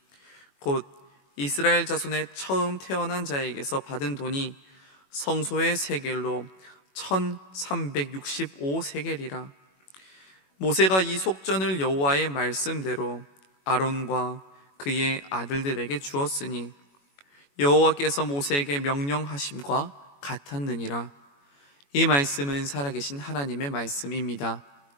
곧 이스라엘 자손의 처음 태어난 자에게서 받은 돈이 성소의 세겔로 1365세겔이라. 모세가 이 속전을 여호와의 말씀대로 아론과 그의 아들들에게 주었으니 여호와께서 모세에게 명령하심과 같았느니라. 이 말씀은 살아계신 하나님의 말씀입니다.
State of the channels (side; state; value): right; late; 21 ms